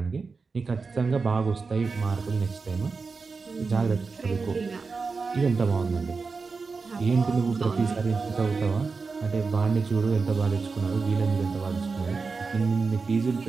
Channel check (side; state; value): left; quieter; 4.5 dB